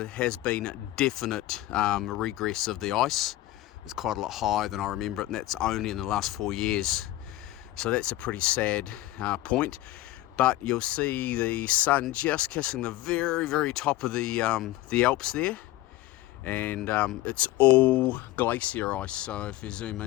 has been definite regress of the ice. It's quite a lot higher than I remember it, and that's only in the last 4 years. So that's a pretty sad point. But you'll see the sun just kissing the very, very top of the Alps there. And it's all glacier ice, so if you zoom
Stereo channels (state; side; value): quieter; right; 16.1 dB